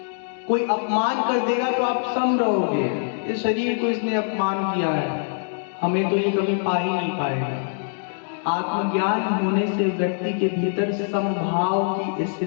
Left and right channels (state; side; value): silent; right; digital silence